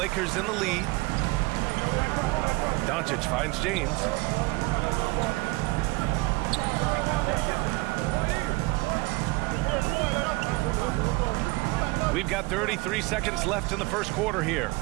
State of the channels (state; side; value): quieter; left; 24.0 dB